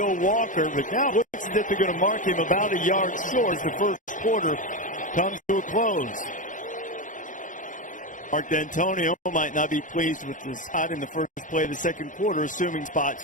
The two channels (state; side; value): late; right; 0.37 ms